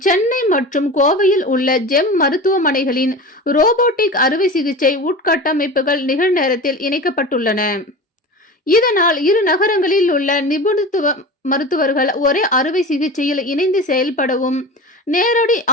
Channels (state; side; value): normal; both; correlation 0.31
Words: சென்னை மற்றும் கோவையில் உள்ள ஜெம் மருத்துவமனைகளின் ரோபோட்டிக் அறுவை சிகிச்சை உட்கட்டமைப்புகள் நிகழ்நேரத்தில் இணைக்கப்பட்டுள்ளன. இதனால் இரு நகரங்களில் உள்ள நிபுணத்துவ மருத்துவர்கள் ஒரே அறுவை சிகிச்சையில் இணைந்து செயல்படவும், நேரடி